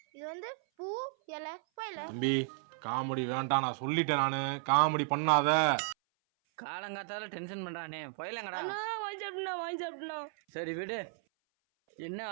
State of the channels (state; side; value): silent; left; 55 dB below the other